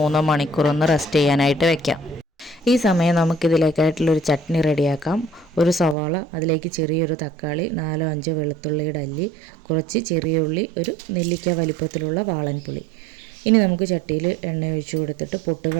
മണിക്കൂറൊന്ന് റെസ്റ്റ് ചെയ്യാനായിട്ട് വെക്കാം. ഈ സമയം നമുക്കിതിലേക്കായിട്ടുള്ളൊരു ചട്നി റെഡിയാക്കാം. 1 സവാള, അതിലേക്ക് ചെറിയൊരു തക്കാളി, 4-5 വെളുത്തുള്ളിയുടെ അല്ലി, കുറച്ച് ചെറിയ ഉള്ളി, 1 നെല്ലിക്ക വലിപ്പത്തിലുള്ള വാളൻപുളി. ഇനി നമുക്ക് ചട്ടിയിൽ എണ്ണ ഒഴിച്ച് കൊടുത്തിട്ട്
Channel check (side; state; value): left; drops out; at 6.0 s